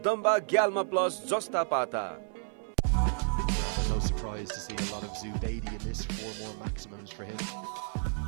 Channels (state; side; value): silent; left; 57 dB below the other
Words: Gyalma Plus Jasta Pata. Paramba, no surprise to see a lot of Zubaidi in this. 4 more maximums for him.